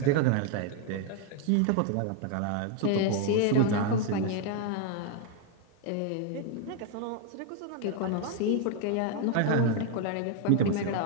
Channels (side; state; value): both; different; correlation 0.01